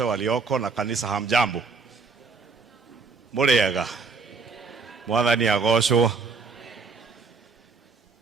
walioko na kanisa, hamjambo? Muriega? Mwathani agocwo.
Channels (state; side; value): quieter; left; 4.6 dB